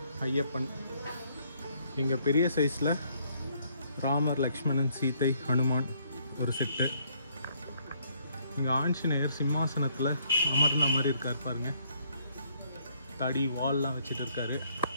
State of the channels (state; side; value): inverted; both; correlation -0.67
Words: ஐயப்பன். இங்கே பெரிய சைஸில் ராமர், லக்ஷ்மணன், சீதை, ஹனுமான் ஒரு செட்டு. இங்கே ஆஞ்சநேயர் சிம்மாசனத்தில் அமர்ந்த மாதிரி இருக்கார் பாருங்க, தடி வால்லாம் வச்சுட்டு இருக்காரு.